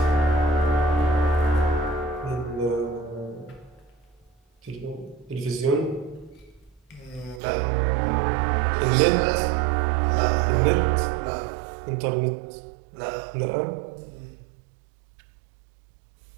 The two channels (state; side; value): drops out; left; at 7.4 s